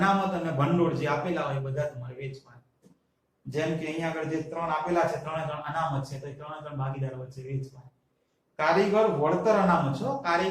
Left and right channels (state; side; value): identical; both; correlation 1.00